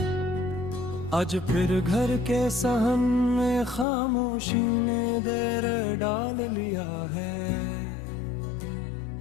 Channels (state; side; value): drops out; right; at 3.9 s